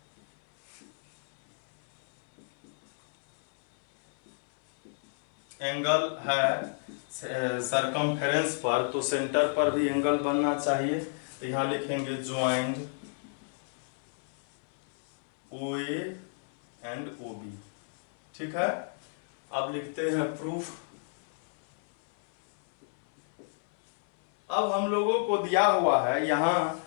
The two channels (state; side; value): silent; right; 58 dB below the other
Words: एंगल है सरकमफेरेंस पर, तो सेंटर पर भी एंगल बनना चाहिए। तो यहां लिखेंगे ज्वाइंट OA एंड OB। ठीक है, अब लिखते हैं प्रूफ। अब हम लोगों को दिया हुआ है, यहां